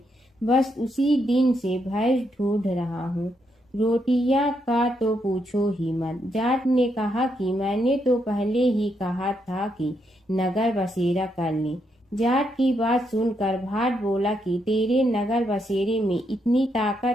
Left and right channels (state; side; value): normal; both; correlation 0.78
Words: बस उसी दिन से भैंस ढूंढ रहा हूँ। रोटियां का तो पूछो ही मत। जाट ने कहा कि मैंने तो पहले ही कहा था कि नगर बसेरा कर ले। जाट की बात सुनकर भाट बोला कि तेरे नगर बसेरे में इतनी